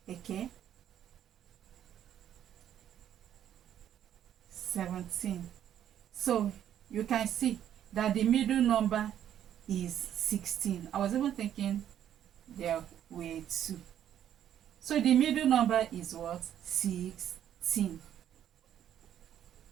Okay, 17. So you can see that the middle number is 16. I was even thinking there were 2. So the middle number is what? 16.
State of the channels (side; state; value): left; quieter; 10.4 dB